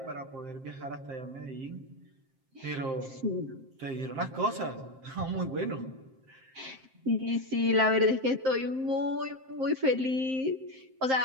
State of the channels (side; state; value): left; late; 7.6 ms